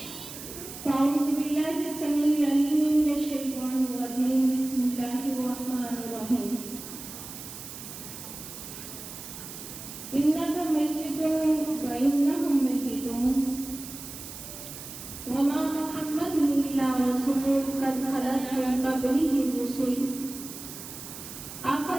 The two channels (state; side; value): noise; right; hiss, 12 dB below the sound